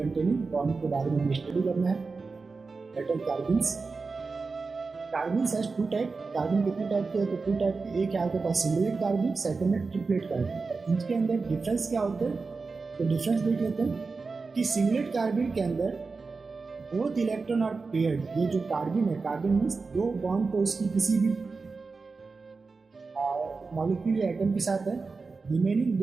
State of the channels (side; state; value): left; quieter; 4.3 dB